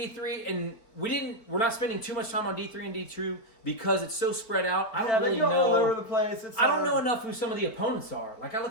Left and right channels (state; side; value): late; right; 4.4 ms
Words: and we're not spending too much time on D3 and D2 because it's so spread out. I don't really know. All over the place. I don't know enough who some of the opponents are. Like I